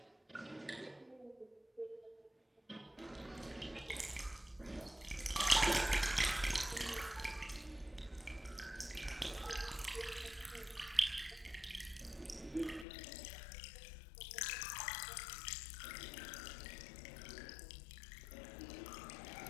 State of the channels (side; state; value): right; drops out; at 12.9 s